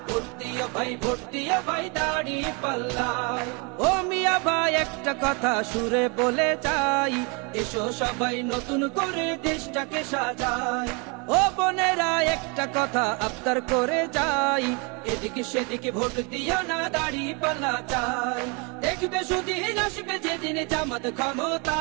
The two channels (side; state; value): left; quieter; 32.6 dB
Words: ভর্তিয়া ভাই ভর্তিয়া ভাই দাড়ি পাল্লায়। ও মিয়া ভাই একটা কথা সুরে বলে যাই, এসো সবাই নতুন করে দেশটাকে সাজাই। ও বোনেরা একটা কথা আবদার করে যাই, এদিকে সেদিকে ভোট দিও না, দাড়ি পাল্লা চাই। দেখবে সুদিন আসবে যেদিন জামাত